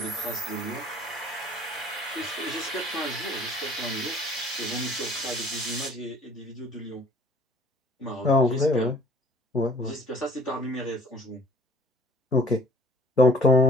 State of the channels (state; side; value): normal; both; correlation 0.53